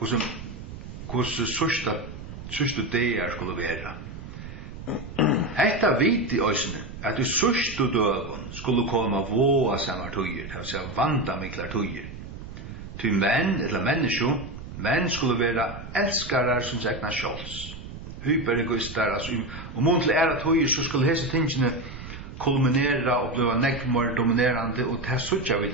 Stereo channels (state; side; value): noise; right; rumble, 11 dB below the sound